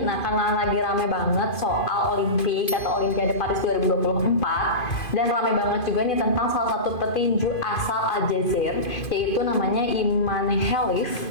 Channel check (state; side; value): late; right; 2.5 ms